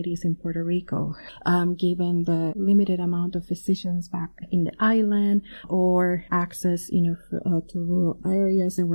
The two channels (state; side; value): inverted; both; correlation -1.00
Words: in Puerto Rico, given the limited amount of physicians back in the island or access, to rural areas. There